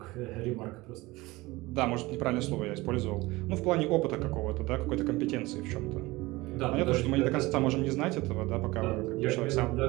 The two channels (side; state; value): left; quieter; 20.8 dB